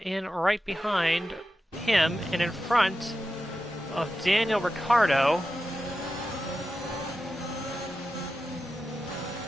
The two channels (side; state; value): both; normal; correlation 0.91